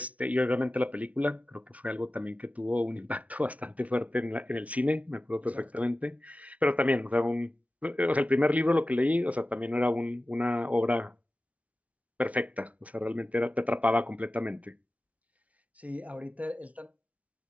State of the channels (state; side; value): late; left; 0.067 ms